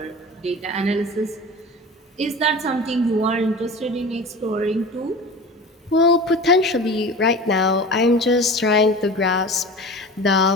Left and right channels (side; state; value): both; normal; correlation 0.35